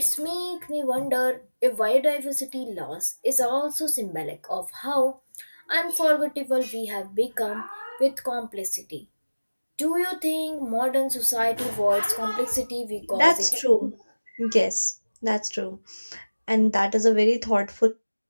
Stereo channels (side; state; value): both; inverted; correlation -1.00